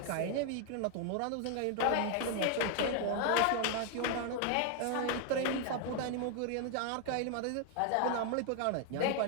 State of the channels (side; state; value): both; different; correlation 0.01